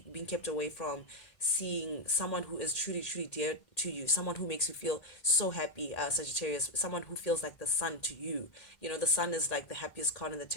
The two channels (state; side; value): late; right; 1.8 ms